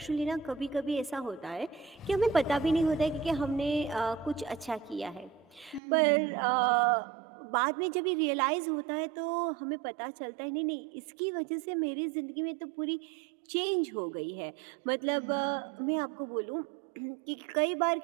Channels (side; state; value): left; drops out; at 5.8 s